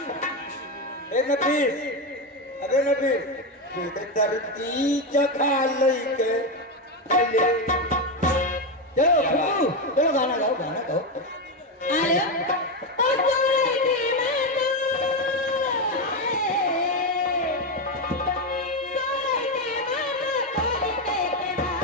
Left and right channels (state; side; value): normal; both; correlation 0.10